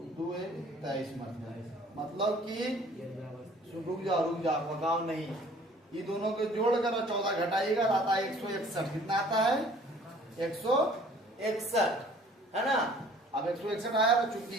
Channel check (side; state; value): both; normal; correlation 0.53